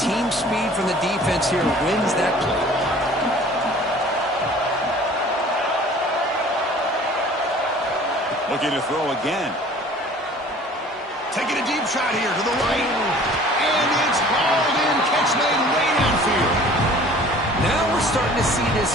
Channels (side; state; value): both; normal; correlation 0.49